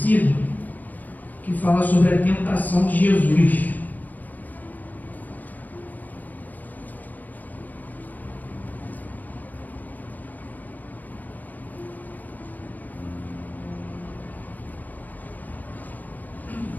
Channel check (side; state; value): right; late; 0.082 ms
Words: que fala sobre a tentação de Jesus.